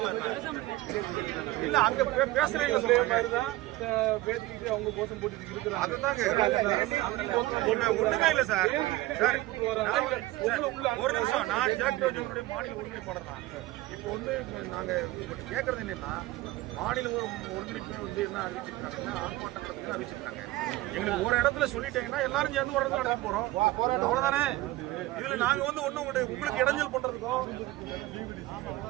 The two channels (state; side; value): quieter; left; 18.1 dB